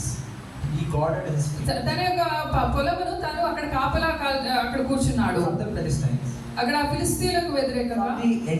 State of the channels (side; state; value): both; identical; correlation 1.00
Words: తన యొక్క పొలమును తను అక్కడ కాపలా అక్కడ కూర్చున్నాడు. From the Philistines. అక్కడ ఫిలిస్తీయులకు వ్యతిరేకంగా the